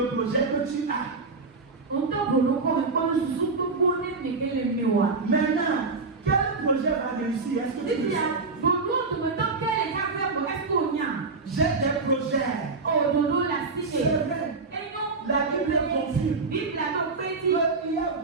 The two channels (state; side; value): quieter; left; 4.1 dB